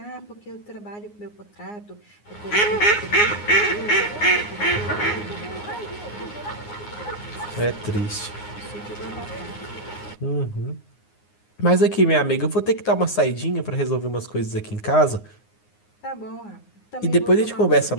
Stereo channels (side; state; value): right; late; 9.6 ms